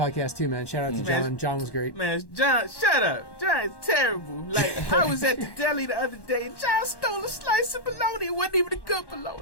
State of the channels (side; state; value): right; late; 1.1 ms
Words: too, man. Shout out to John. John was great. Man, John, shut up. John is terrible. Like, I was at the deli the other day and John stole a slice of bologna. It wasn't even a good